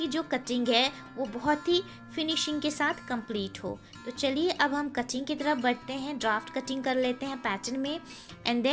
जो कटिंग है वो बहुत ही फिनिशिंग के साथ कंप्लीट हो। तो चलिए अब हम कटिंग की तरफ बढ़ते हैं, ड्राफ्ट कटिंग कर लेते हैं पैटर्न में एंड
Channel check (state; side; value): identical; both; correlation 1.00